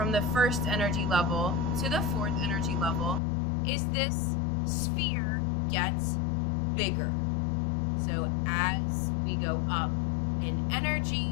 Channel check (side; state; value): right; drops out; at 3.2 s